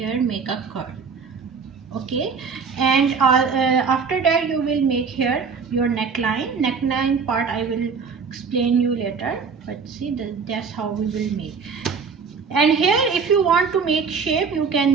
make a curve. Okay, and after that you will make here your neckline part. I will explain you later, but see, that's how we will make. And here if you want to make shape, you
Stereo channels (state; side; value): quieter; left; 5.5 dB